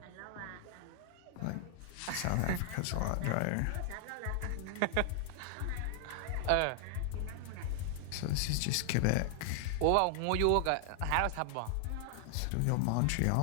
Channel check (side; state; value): both; different; correlation 0.00